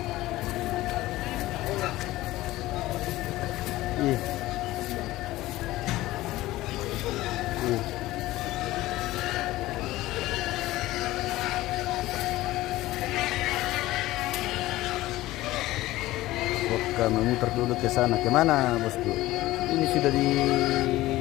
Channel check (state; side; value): quieter; right; 17.1 dB